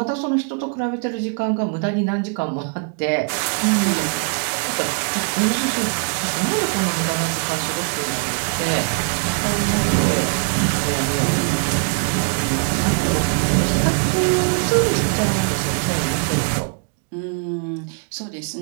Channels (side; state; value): left; quieter; 40.0 dB